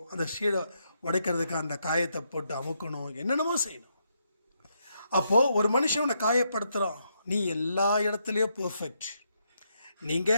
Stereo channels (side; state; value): both; inverted; correlation -0.78